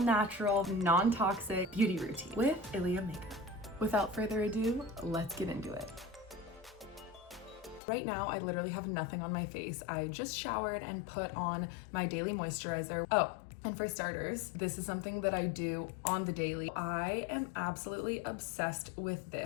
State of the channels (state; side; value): drops out; right; at 7.8 s